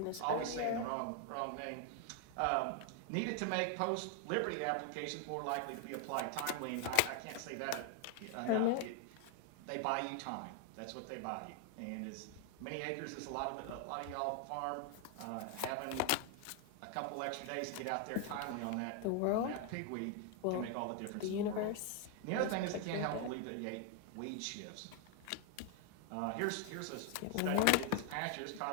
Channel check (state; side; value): different; both; correlation 0.00